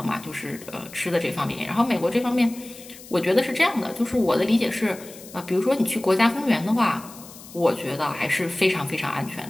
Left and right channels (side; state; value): left; noise; hiss, 18 dB below the sound